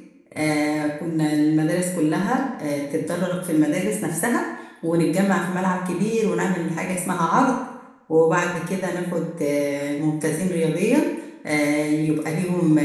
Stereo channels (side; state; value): both; identical; correlation 1.00